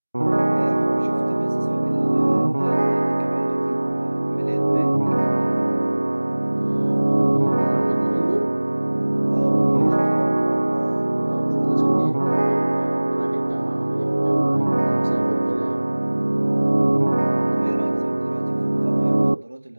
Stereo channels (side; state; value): both; inverted; correlation -1.00